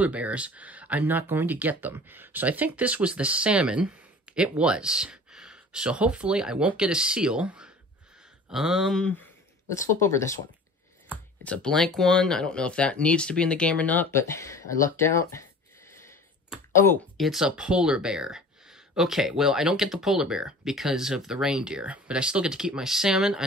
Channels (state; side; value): normal; both; correlation 0.43